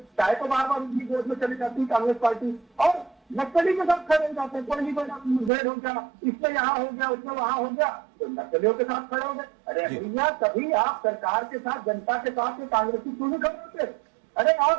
चाहे तो बार बार उनकी गोद में चली जाती कांग्रेस पार्टी और नक्सली के साथ खड़े हो जाते हैं। कोई मुठभेड़ हो गया, इसमें यहाँ हो गया, उसमें वहां हो गया, तो नक्सलियों के साथ खड़े हो गए। अरे भैया, कभी आप सरकार के साथ, जनता के साथ कांग्रेसी क्यों नहीं खड़े होते? अरे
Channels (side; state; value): left; drops out; at 5.5 s